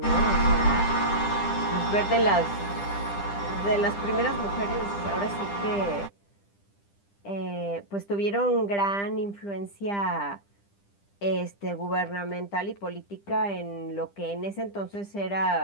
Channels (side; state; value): right; late; 10 ms